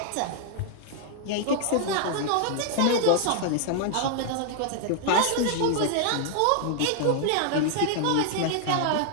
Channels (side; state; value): both; different; correlation 0.00